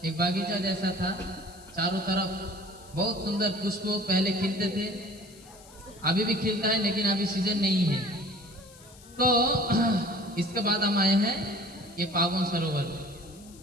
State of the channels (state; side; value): noise; left; hiss, 22 dB below the sound